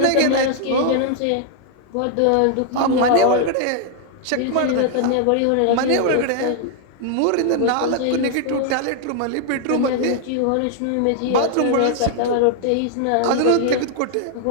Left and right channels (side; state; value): both; different; correlation -0.01